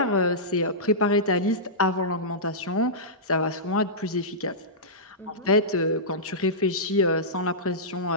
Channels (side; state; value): both; normal; correlation -0.16